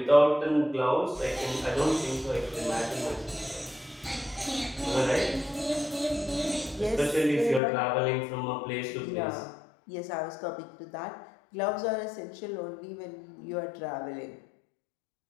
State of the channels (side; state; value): right; drops out; at 7.6 s